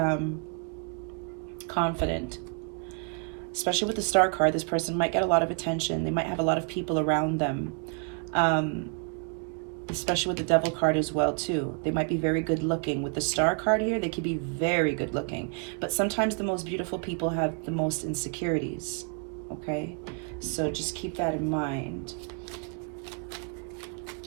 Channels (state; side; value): quieter; left; 37.9 dB